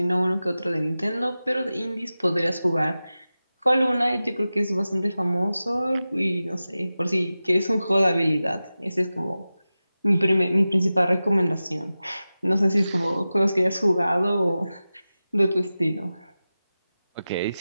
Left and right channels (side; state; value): both; inverted; correlation -0.95